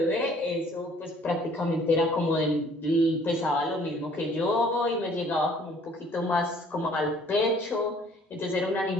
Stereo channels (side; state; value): both; normal; correlation 0.57